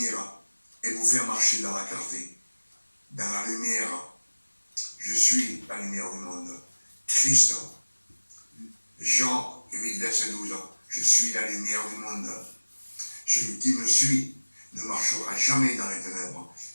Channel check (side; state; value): both; inverted; correlation -1.00